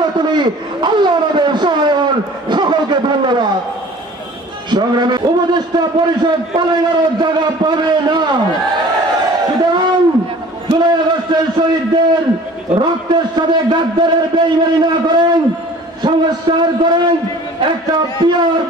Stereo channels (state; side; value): normal; both; correlation 0.47